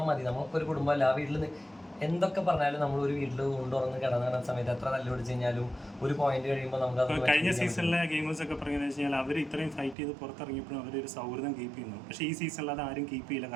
മതി. നമുക്കൊരു കുടുംബമല്ല. ആ വീട്ടിൽ എന്തൊക്കെ പറഞ്ഞാലും നമ്മൾ ഒരു വീട്ടിൽ കൊണ്ടുവന്ന് കിടന്ന സമയത്ത് എത്ര തല്ല് പിടിച്ച് കഴിഞ്ഞാലും ഒരു പോയിന്റ് കഴിയുമ്പോൾ നമുക്ക് കഴിഞ്ഞ സീസണിലെ ഗെയിമേഴ്സ് ഒക്കെ പറയുന്നത് വെച്ച് കഴിഞ്ഞാൽ അവർ ഇത്രയും ഫൈറ്റ് ചെയ്ത് പുറത്തിറങ്ങിയപ്പോഴും അവരൊരു സൗഹൃദം കീപ്പ് ചെയ്യുന്നു. പക്ഷേ ഈ സീസണിൽ അത് ആരും കീപ്പ് ചെയ്യില്ല,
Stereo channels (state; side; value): drops out; left; at 10.0 s